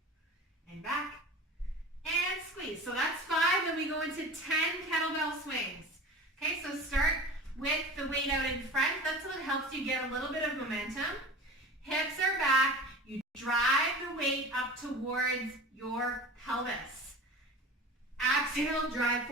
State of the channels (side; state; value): both; normal; correlation 0.36